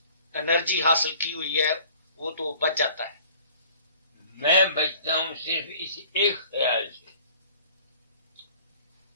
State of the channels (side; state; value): both; inverted; correlation -0.51